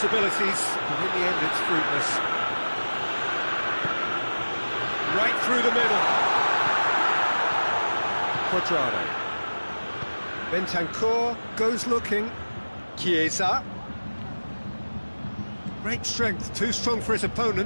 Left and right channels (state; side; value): inverted; both; correlation -1.00